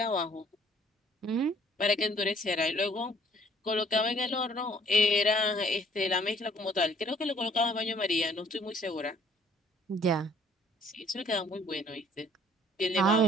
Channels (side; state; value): both; normal; correlation 0.59